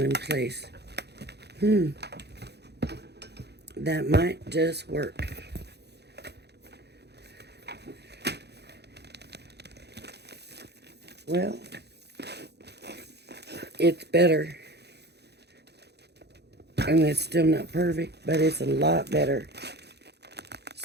in place. That might just work. Well, it's better. And it's still not perfect, but it's a lot better.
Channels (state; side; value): late; left; 0.48 ms